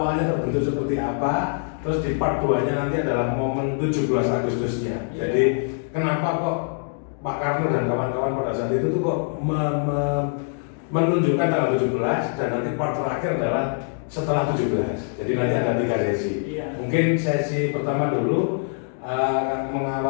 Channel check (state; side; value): silent; right; 63 dB below the other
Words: terbentuk seperti apa. Terus di part 2-nya nanti adalah momen 17 Agustusnya. Yeah. Jadi kenapa kok Pak Karno dan kawan-kawan pada saat itu tuh kok menunjukkan tanggal 17, dan nanti part terakhir adalah setelah 17. Jadi nanti ada 3 sesi. Iya. Mungkin sesi pertama dulu